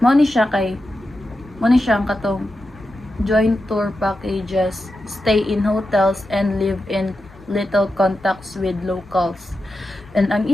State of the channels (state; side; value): normal; both; correlation 0.90